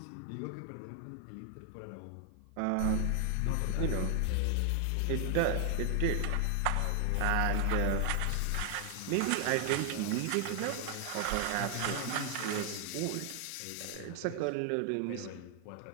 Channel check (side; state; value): both; different; correlation 0.00